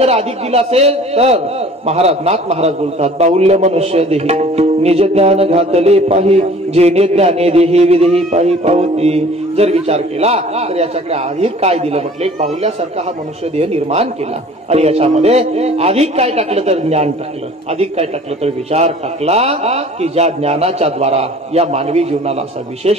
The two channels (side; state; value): both; normal; correlation 0.48